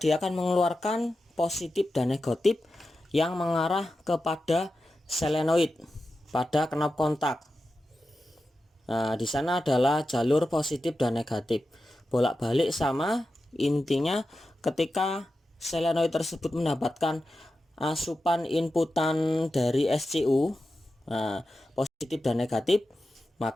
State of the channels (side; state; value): both; normal; correlation 0.91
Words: akan mengeluarkan positif dan negatif yang mengarah kepada solenoid pada knop kontak. Nah, di sana adalah jalur positif dan negatif. Bolak-balik sama, intinya ketika solenoid tersebut mendapatkan asupan inputan dari SCU, nah, positif dan negatif,